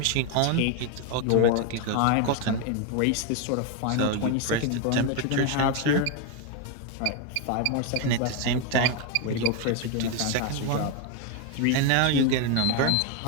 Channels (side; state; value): both; different; correlation 0.02